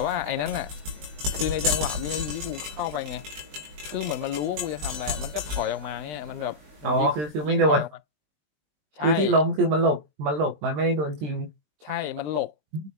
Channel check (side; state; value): left; late; 20 ms